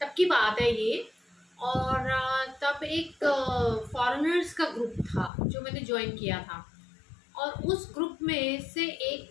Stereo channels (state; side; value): drops out; right; at 5.3 s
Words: की बात है ये। और तब एक फॉरेनर्स का ग्रुप था जो मैंने ज्वाइन किया था। और उस ग्रुप में से